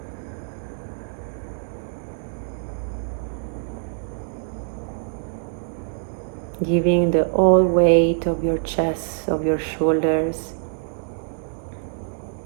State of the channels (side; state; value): left; silent; digital silence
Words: Giving the whole weight of your chest, of your shoulders.